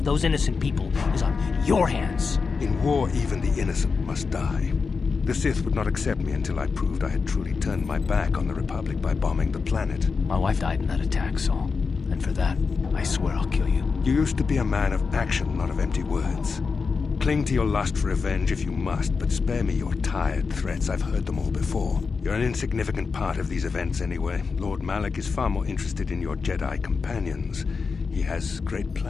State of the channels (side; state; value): right; quieter; 4.9 dB